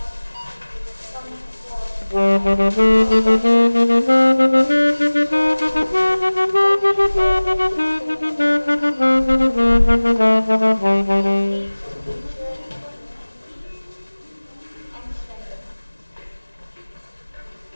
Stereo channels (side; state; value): both; inverted; correlation -1.00